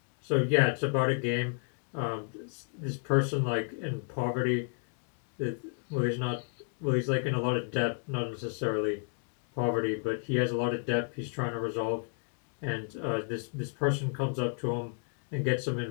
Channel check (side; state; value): right; quieter; 38.8 dB